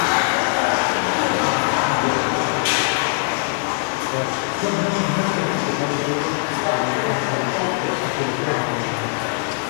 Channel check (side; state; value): right; silent; 60 dB below the other